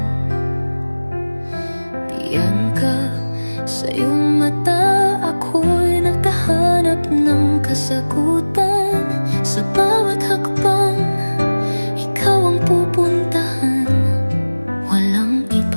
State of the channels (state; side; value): inverted; both; correlation -1.00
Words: Diyan ka, sa iyong mata ako'y naghahanap ng kasagutan. Sa bawat hakbang, ikaw ang pupuntahan. Walang